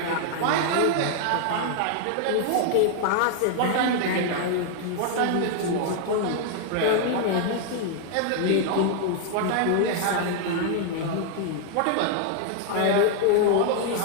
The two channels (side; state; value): both; different; correlation 0.00